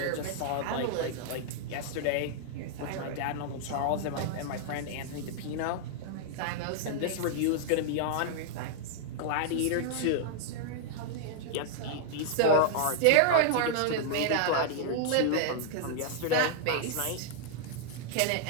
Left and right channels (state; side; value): different; both; correlation -0.01